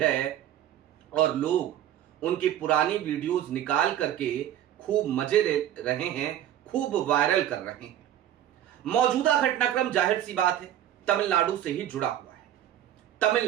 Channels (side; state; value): left; quieter; 11.6 dB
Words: और लोग उनकी पुरानी वीडियोस निकाल करके खूब मजे ले रहे हैं, खूब वायरल कर रहे हैं। मौजूदा घटनाक्रम जाहिर सी बात है तमिलनाडु से ही जुड़ा हुआ है।